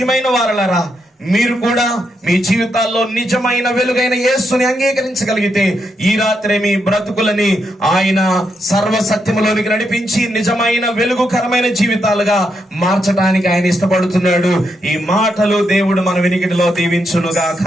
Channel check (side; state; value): both; normal; correlation 0.81